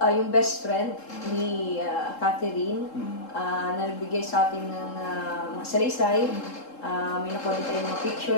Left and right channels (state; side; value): late; right; 3.7 ms